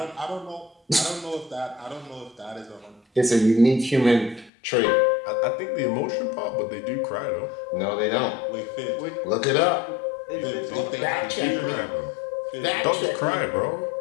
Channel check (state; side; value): drops out; right; at 4.5 s